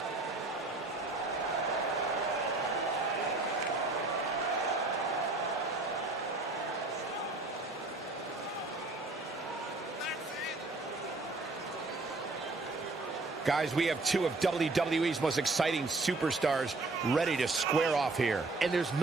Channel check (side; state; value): left; quieter; 3.3 dB